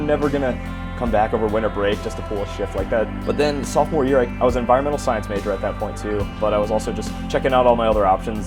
never gonna come back over winter break just to pull a shift like that. But then sophomore year, I was an environmental science major at that point too, but I was also just checking out all my other options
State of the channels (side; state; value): both; identical; correlation 1.00